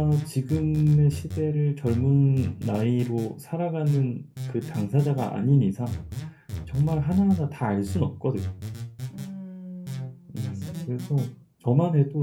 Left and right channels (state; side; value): identical; both; correlation 1.00